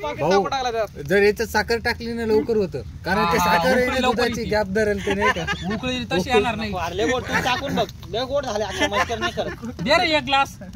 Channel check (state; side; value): identical; both; correlation 1.00